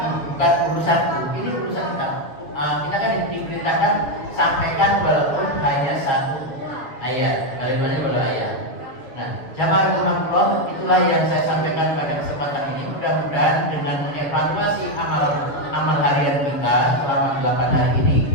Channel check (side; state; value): right; late; 6.7 ms